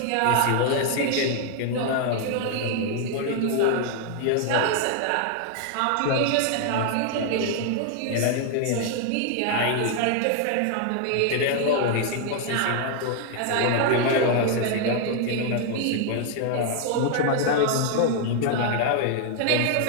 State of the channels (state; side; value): different; both; correlation 0.00